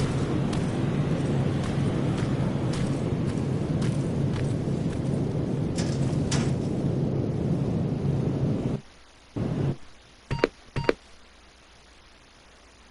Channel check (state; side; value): identical; both; correlation 1.00